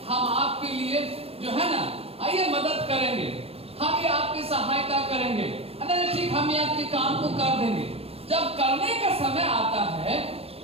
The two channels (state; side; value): late; left; 0.29 ms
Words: हम आपके लिए जो है ना आइए मदद करेंगे, हम ये आपकी सहायता करेंगे, अरे ठीक हम ये आपके काम को कर देंगे। जब करने का समय आता है